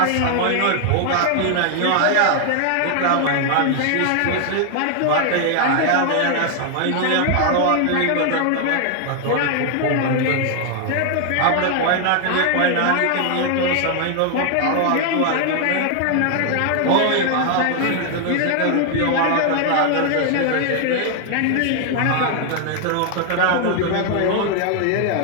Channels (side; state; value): both; different; correlation 0.00